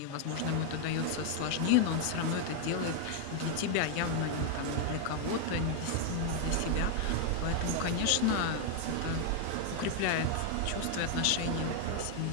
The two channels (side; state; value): both; different; correlation 0.00